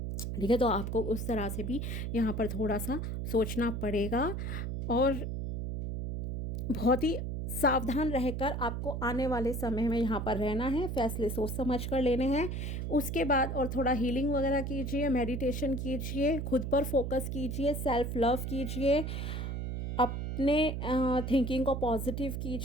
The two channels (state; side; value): noise; right; hum, 3 dB below the sound